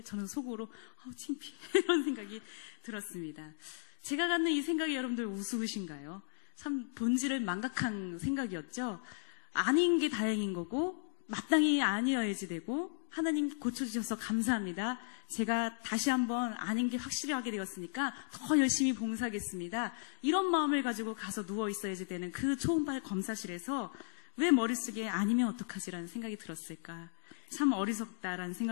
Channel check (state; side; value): silent; right; digital silence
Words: 저는 속으로 창피해 이런 생각이 들었습니다. 제가 갖는 이 생각이 여러분들 우스우신가요? 참 본질을 망각한 생각이었죠. 아닌 게 다행인 거고 마땅히 아니어야지 되고 하나님 고쳐주셔서 감사합니다. 제가 다시 한번 아닌 게 확실히 하게 되었으니까 더 열심히 봉사하겠습니다. 이런 마음을 가지고 가서 누워 있어야지 되는 그 초음파 검사실에서 왜 머릿속에 아니면 어떡하지라는 생각이 들었을까? 참 어리석다라는